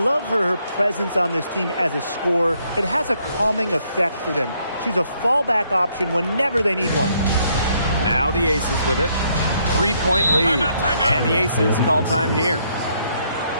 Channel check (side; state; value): both; inverted; correlation -0.71